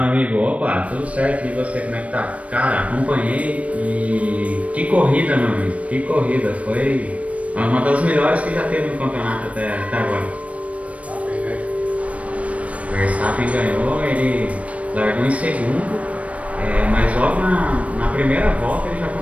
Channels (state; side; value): late; left; 0.065 ms